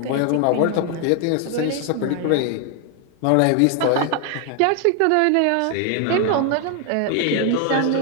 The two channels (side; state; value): both; different; correlation 0.00